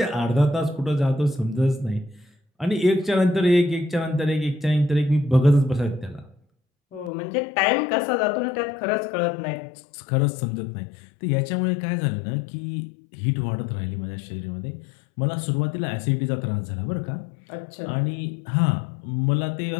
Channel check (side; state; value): right; drops out; at 7.1 s